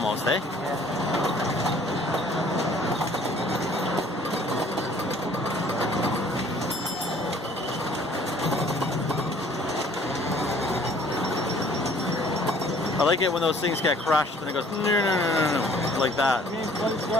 eh? I like it when those things get crushed and it goes no, like that. I mean, what is good?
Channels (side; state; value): both; normal; correlation 0.56